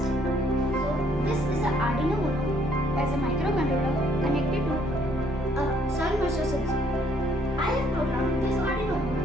So this is a Arduino Uno as a microcontroller connected to a soil moisture sensor. I have programmed this Arduino Uno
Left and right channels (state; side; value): normal; both; correlation 0.66